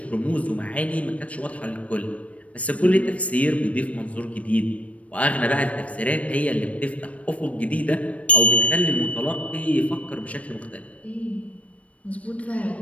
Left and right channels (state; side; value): late; right; 0.065 ms